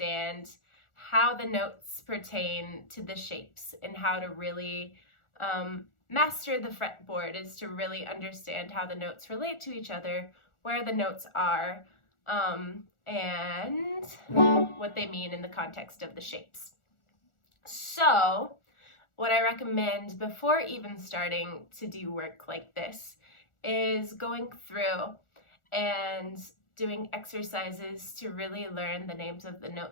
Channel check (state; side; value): late; right; 1.4 ms